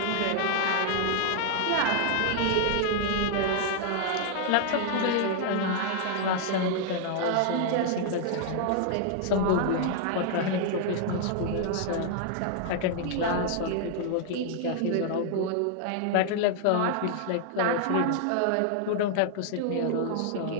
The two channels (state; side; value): different; both; correlation 0.00